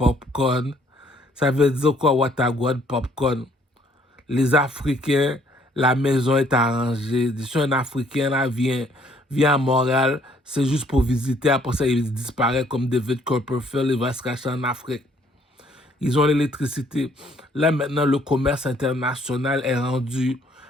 Ça veut dire quoi, Watagouane popcorn? Les Africains, la maison est arrangée. Si un Africain là vient vient à Montréal, c'est juste pour visiter. Après ça, il disparaît comme David Copperfield, il va se cacher en Afrique. Ils ont l'électricité. Là, maintenant, le commerce international est rendu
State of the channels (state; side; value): normal; both; correlation 0.63